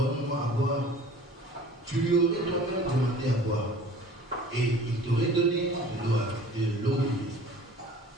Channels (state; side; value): normal; both; correlation 0.47